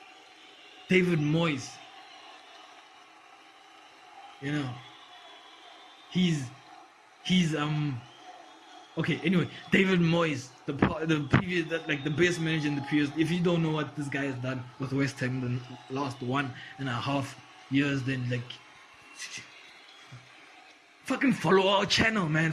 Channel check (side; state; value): both; identical; correlation 1.00